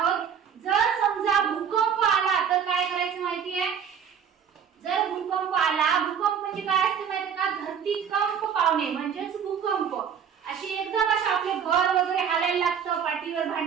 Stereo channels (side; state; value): left; quieter; 7.8 dB